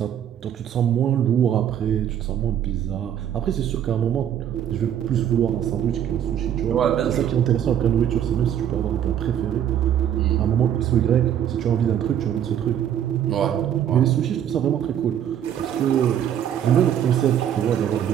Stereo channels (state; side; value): quieter; left; 9.9 dB